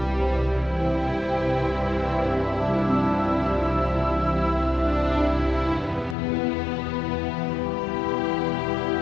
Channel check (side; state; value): right; drops out; at 6.2 s